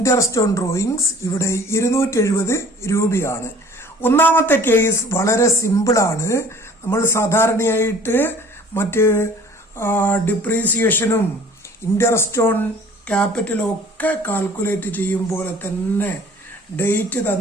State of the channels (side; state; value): both; normal; correlation 0.50